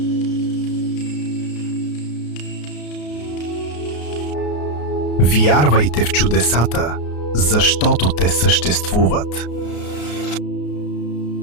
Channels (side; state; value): right; late; 33 ms